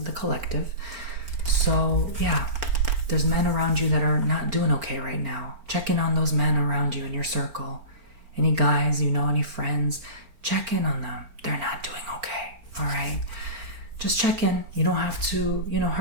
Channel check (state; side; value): late; left; 4.4 ms